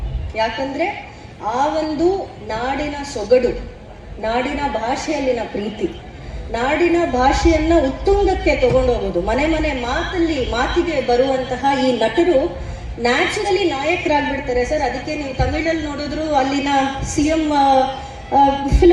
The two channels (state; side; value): identical; both; correlation 1.00